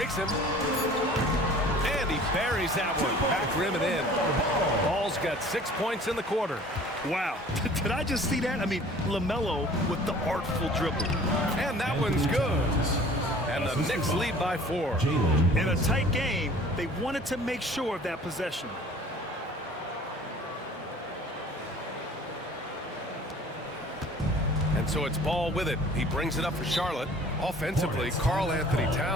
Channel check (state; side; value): normal; both; correlation 0.49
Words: him. And he buries that one. Back rim and in. Ball's got 6 points in the quarter. Wow. Did I just see that? I mean, LaMelo with the artful dribble. And that one's good. And the Knicks lead by 4. In a tight game, they wanted to make sure of that possession. And so it's Ball with it. He brings it up for Charlotte. Offensively, Karl Anthony